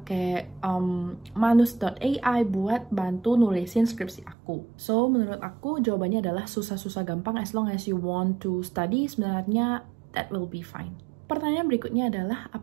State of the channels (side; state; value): left; drops out; at 4.4 s